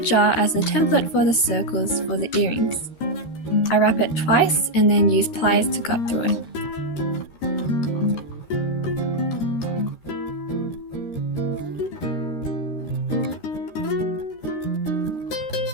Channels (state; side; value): late; right; 13 ms